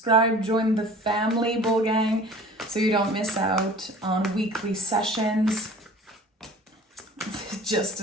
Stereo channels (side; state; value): both; normal; correlation 0.45